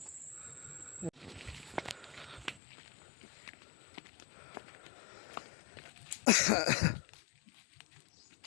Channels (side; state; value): right; drops out; at 2.6 s